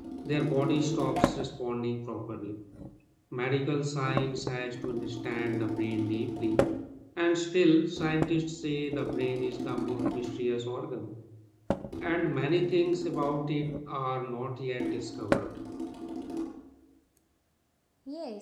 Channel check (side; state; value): both; identical; correlation 1.00